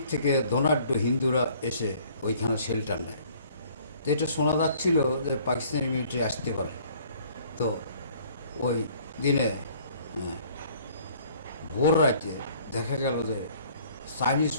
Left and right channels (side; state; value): both; inverted; correlation -0.56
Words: থেকে ধনাঢ্য হিন্দুরা এসে ওইখানে শেল্টার নেয়। তো এটা শোনা যাচ্ছিল যে পাকিস্তানি মিলিটারি আসতে পারে। তো ওই দিনে ভোর রাতে দেখা গেল যে চাইনিজ